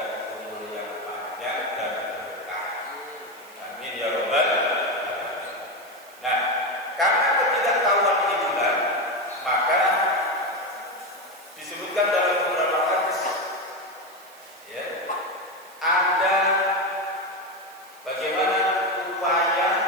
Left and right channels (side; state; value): right; noise; hiss, 23 dB below the sound